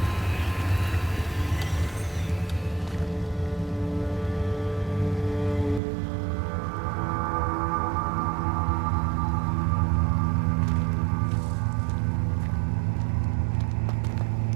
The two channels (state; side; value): drops out; left; at 5.8 s